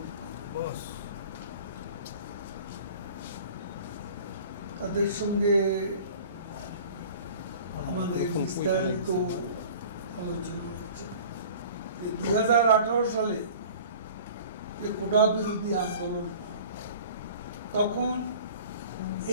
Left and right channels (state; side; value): inverted; both; correlation -0.44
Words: তাদের সঙ্গে আমাদের বিস্তারিত আলোচনা হচ্ছে। 2018 সালে যে কোটা বিরোধী আন্দোলন, তখন